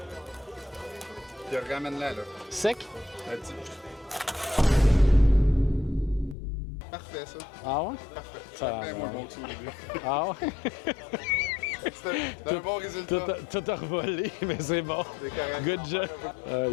Puis ramène-la, là. Sec? Un petit- Parfait, ça. Ah ouais? Parfait. Ça Ça fait va. moins bon que ça au début. Ah ouais? C'est un bon résultat. Tout a revolé, mais c'est bon. C'est correct. Good job. Aïe,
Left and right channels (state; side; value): drops out; right; at 6.4 s